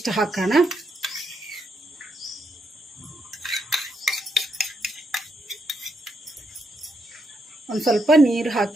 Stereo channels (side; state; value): both; normal; correlation 0.79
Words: ಹಾಕೋಣ, ಒಂದು ಸ್ವಲ್ಪ ನೀರು